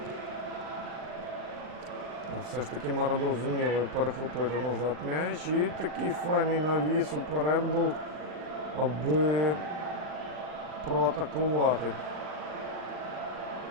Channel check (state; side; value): late; left; 39 ms